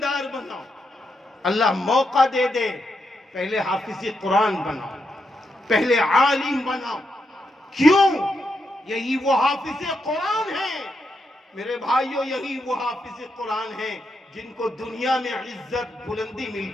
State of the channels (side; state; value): both; normal; correlation 0.83